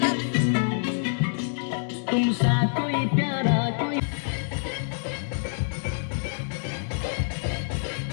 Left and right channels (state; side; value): silent; right; digital silence